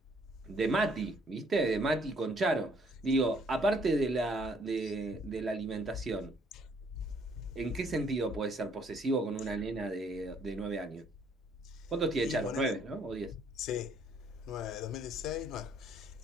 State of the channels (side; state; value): both; normal; correlation 0.65